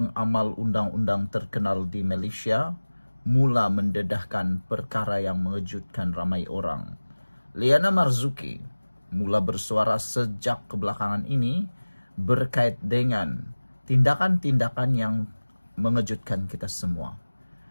undang-undang terkenal di Malaysia mula mendedahkan perkara yang mengejutkan ramai orang. Liana Marzuki mula bersuara sejak kebelakangan ini berkait dengan tindakan-tindakan yang mengejutkan kita semua.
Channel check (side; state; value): both; inverted; correlation -1.00